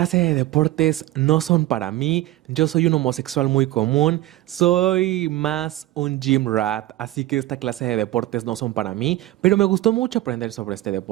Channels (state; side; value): quieter; left; 16.0 dB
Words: de deportes no son para mí, yo soy un homosexual muy común, soy más un gym rat, así que esta clase de deportes no son para mí, pero me gustó mucho aprender sobre este